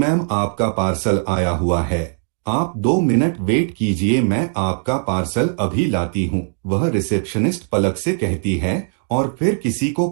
आपका पार्सल आया हुआ है। आप 2 मिनट वेट कीजिए, मैं आपका पार्सल अभी लाती हूँ, वह रिसेप्शनिस्ट पलक से कहती है और फिर किसी को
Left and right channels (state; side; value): silent; left; digital silence